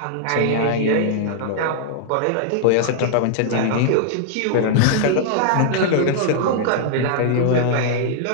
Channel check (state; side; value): different; both; correlation -0.01